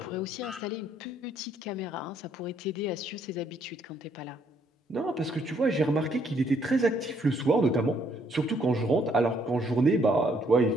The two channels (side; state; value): both; normal; correlation 0.68